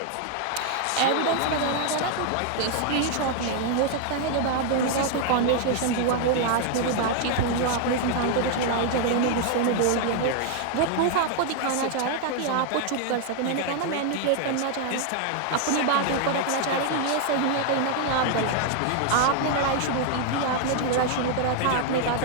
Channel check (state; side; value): different; both; correlation 0.00